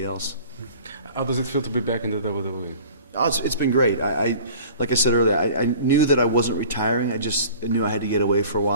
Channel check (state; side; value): inverted; both; correlation -0.45